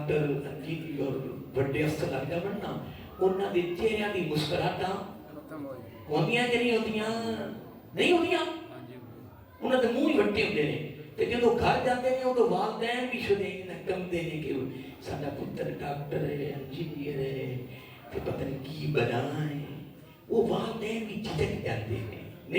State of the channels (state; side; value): identical; both; correlation 1.00